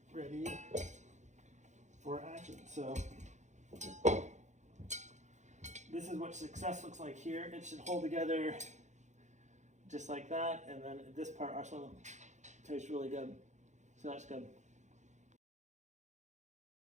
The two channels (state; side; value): late; left; 0.34 ms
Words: ready for action. So this is what success looks like here. It should hold together just like that, and then this part also tastes really good. So that's good.